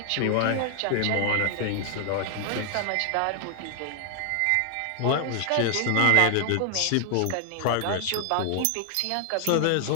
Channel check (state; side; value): different; both; correlation 0.00